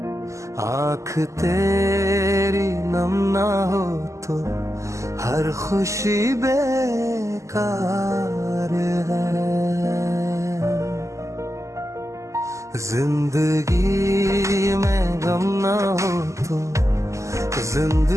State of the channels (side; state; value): left; late; 0.15 ms